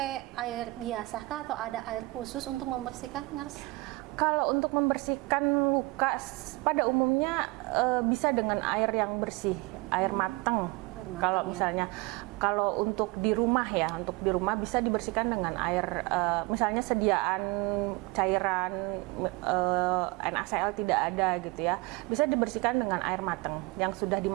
air biasa kah atau ada air khusus untuk membersihkan, nurse? Kalau untuk membersihkan luka pada umumnya bisa dengan air yang bersih, air matang. Kalau misalnya kalau untuk di rumah bisa dibersihkan dengan air misalnya sediaan cairan NaCl tidak ada gitu ya, bisa dibersihkan dengan air matang yang sudah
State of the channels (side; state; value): left; quieter; 24.4 dB